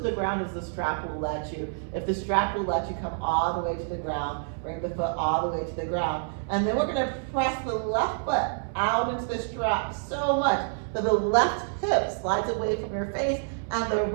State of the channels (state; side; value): silent; left; digital silence